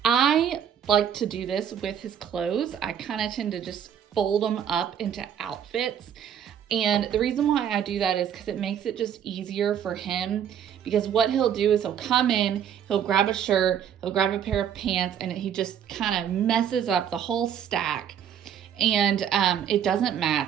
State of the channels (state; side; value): quieter; left; 9.0 dB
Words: like to do this with his clothes. I kind of tend to just fold them up into outfits. And the reason why I do that is because it makes it just easier for him. Because what he'll do is he'll come in, he'll grab a shirt, he'll grab a pair of pants, and he just kind of messes up the whole stack. And it doesn't